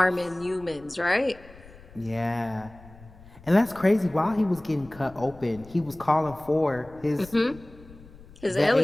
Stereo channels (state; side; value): noise; left; rumble, 21 dB below the sound